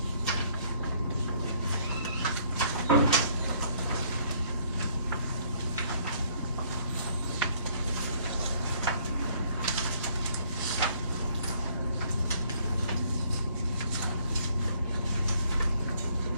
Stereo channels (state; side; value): inverted; both; correlation -0.63